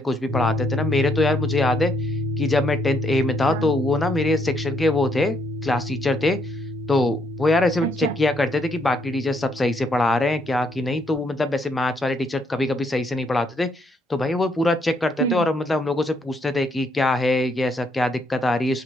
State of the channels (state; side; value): normal; both; correlation 0.72